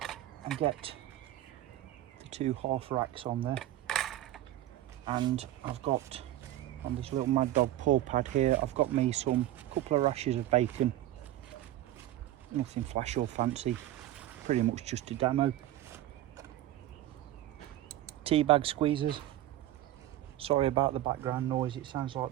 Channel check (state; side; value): quieter; left; 14.0 dB